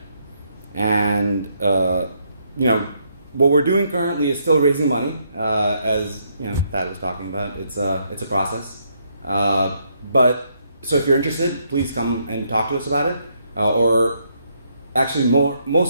And what we're doing currently is still raising money, as Thad was talking about. It's a process. But so if you're interested, please come and talk to us about it. Or actually,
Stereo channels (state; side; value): inverted; both; correlation -0.74